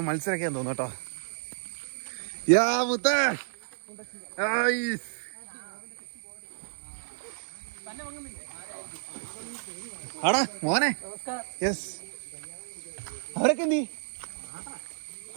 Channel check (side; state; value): left; silent; digital silence